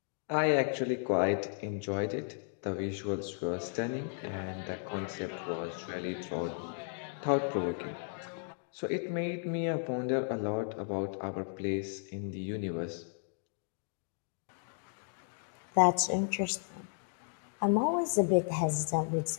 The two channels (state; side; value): silent; right; 55 dB below the other